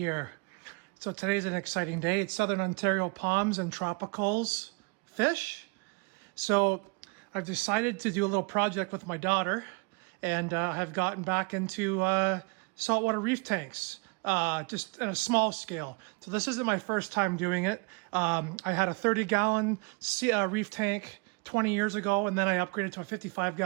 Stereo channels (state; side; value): quieter; left; 31.4 dB